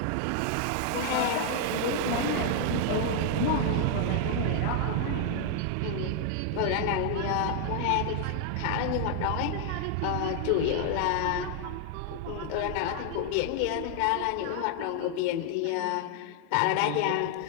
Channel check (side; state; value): both; different; correlation 0.00